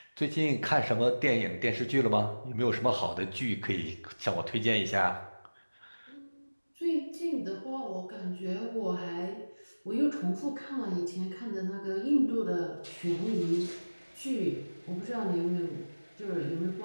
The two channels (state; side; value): inverted; both; correlation -1.00